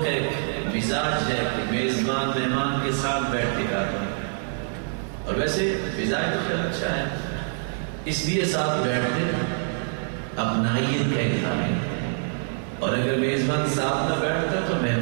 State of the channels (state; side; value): silent; left; digital silence